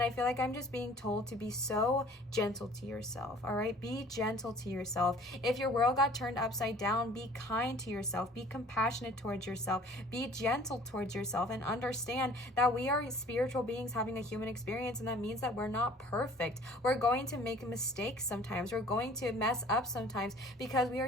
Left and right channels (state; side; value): normal; both; correlation 0.50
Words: I feel like I'm just being told to be so gentle to yourself, all right? Be gentle to yourself. If your world got turned upside down, be kind to yourself, be compassionate towards yourself, be gentle towards yourself, and understand that we are spiritual beings having a human experience, and that means that we're not perfect. We're going to make mistakes sometimes. We're going to mess up sometimes because we are